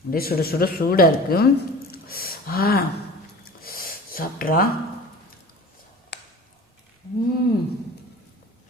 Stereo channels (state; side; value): normal; both; correlation 0.40